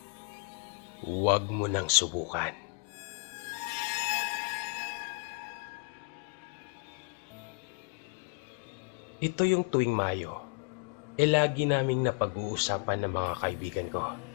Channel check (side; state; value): right; quieter; 35.1 dB